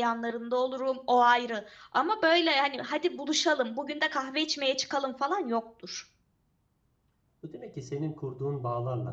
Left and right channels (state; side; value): identical; both; correlation 1.00